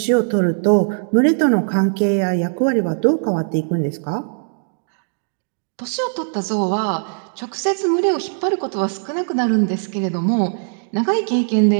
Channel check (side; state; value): left; silent; digital silence